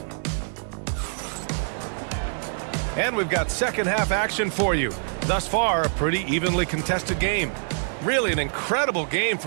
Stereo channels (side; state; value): left; silent; digital silence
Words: And we've got second half action for you. Thus far, a pretty evenly contested game. Really an incredible game